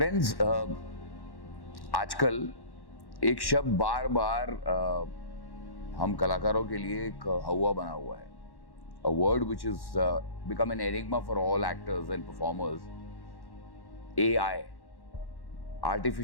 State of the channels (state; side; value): late; right; 1.1 ms